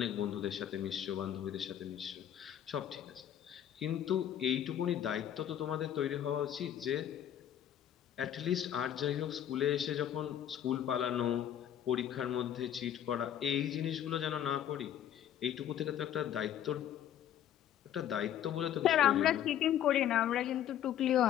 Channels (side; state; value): right; quieter; 10.5 dB